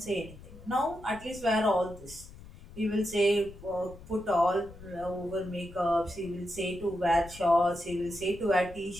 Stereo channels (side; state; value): left; noise; rumble, 18 dB below the sound